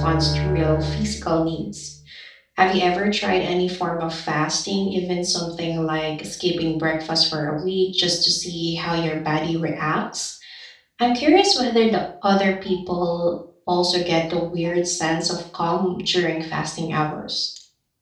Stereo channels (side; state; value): both; identical; correlation 1.00